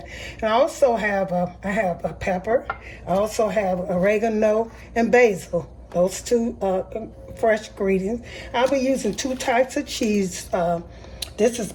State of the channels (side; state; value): both; identical; correlation 1.00